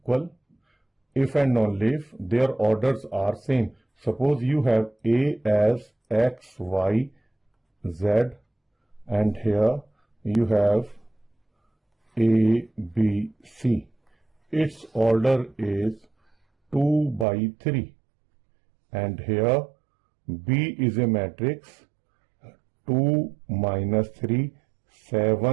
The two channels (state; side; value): drops out; left; at 17.2 s